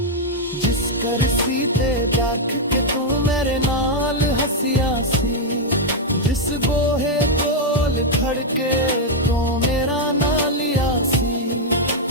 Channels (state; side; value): normal; both; correlation -0.01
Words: जिस कर सी ते देख के तू मेरे नाल हंसिया सी जिस गोहे कोल खड़के तू मेरा ना लिया सी